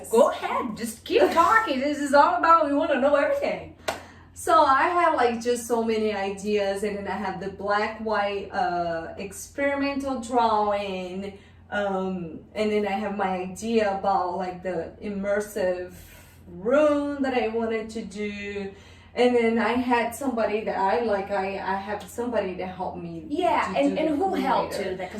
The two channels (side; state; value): both; identical; correlation 1.00